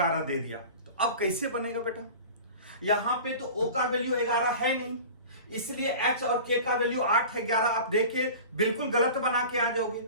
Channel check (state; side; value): inverted; both; correlation -0.38